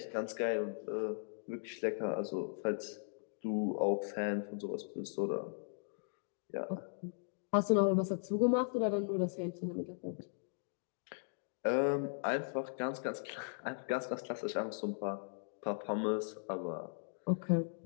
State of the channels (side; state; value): right; silent; digital silence